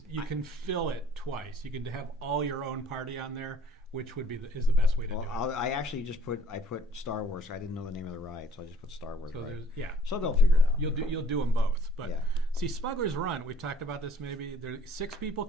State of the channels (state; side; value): normal; both; correlation 0.56